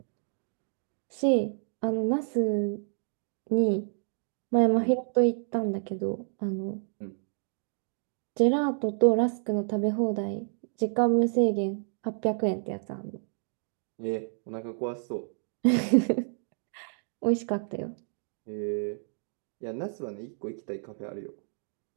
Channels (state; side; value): silent; left; digital silence